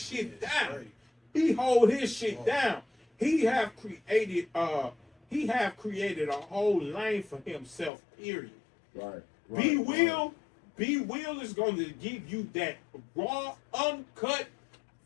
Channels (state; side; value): drops out; right; at 7.9 s